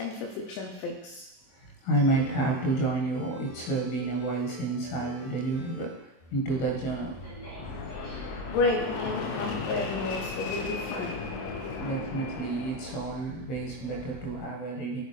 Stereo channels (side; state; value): right; late; 23 ms